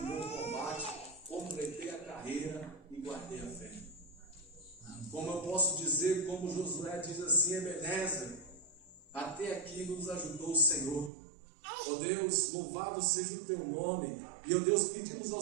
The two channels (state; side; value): drops out; left; at 11.1 s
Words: meu combate, completei a carreira e guardei a fé. Como eu posso dizer, como Josué diz assim: Ebenezer, até aqui nos ajudou o Senhor. Ó Deus, louvado seja o teu nome. E, ó Deus, pedimos